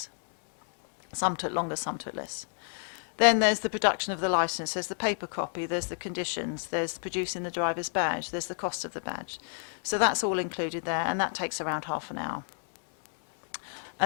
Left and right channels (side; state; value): right; silent; 57 dB below the other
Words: Some took longer, some took less. Then there's the production of the licence, there's the paper copy, there's the conditions, there's producing the driver's badge, there's the cost of the badge. So that's all included there, and that takes around half an hour.